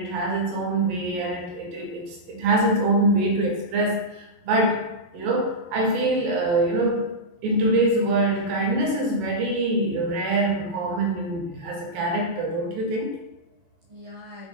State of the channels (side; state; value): left; late; 12 ms